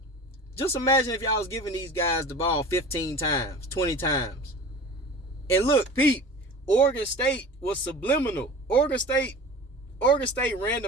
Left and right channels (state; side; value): normal; both; correlation 0.38